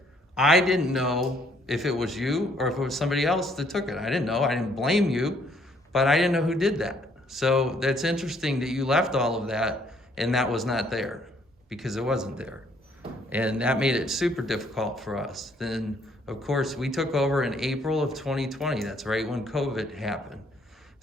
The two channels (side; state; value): both; normal; correlation 0.65